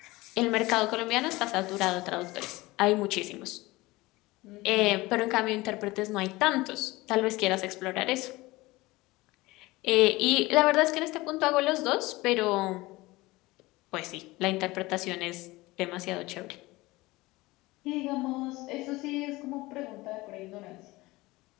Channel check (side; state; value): right; quieter; 20.6 dB